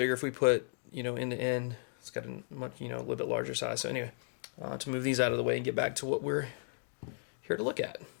if we put, you know, end to end. It's got a much, you know, a little bit larger size. So anyway, to move these out of the way and get back to what we're here to look at.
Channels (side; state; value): right; silent; digital silence